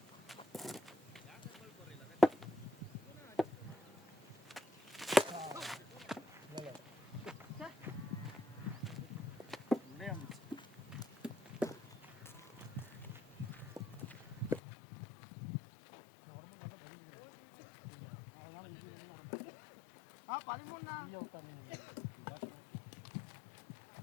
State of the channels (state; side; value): drops out; right; at 14.6 s